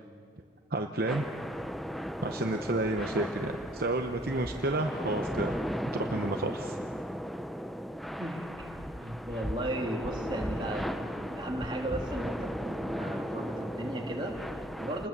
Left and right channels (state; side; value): normal; both; correlation 0.59